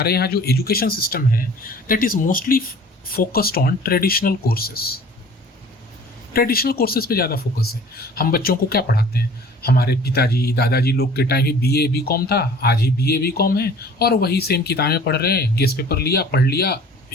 यहाँ जो एजुकेशन सिस्टम है, that is mostly focused on traditional courses. Traditional courses पे ज़्यादा फोकस है। हम बच्चों को क्या पढ़ाते हैं? हमारे पिताजी दादाजी लोग के टाइम ही BA BCom था, आज ही BA BCom है, और वही सेम किताबें पढ़ रहे हैं, गेस्ट पेपर लिया, पढ़ लिया,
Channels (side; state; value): both; normal; correlation 0.48